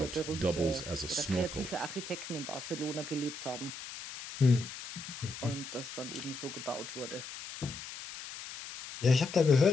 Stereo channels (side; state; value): left; noise; hiss, 11 dB below the sound